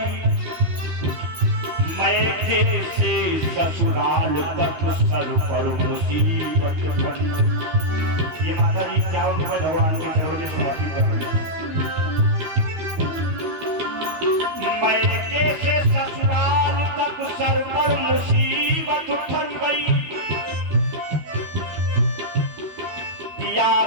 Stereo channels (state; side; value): late; left; 13 ms